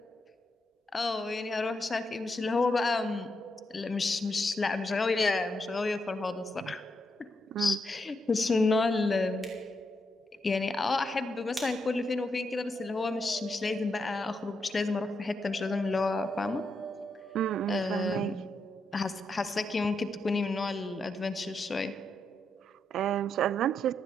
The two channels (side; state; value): both; normal; correlation 0.81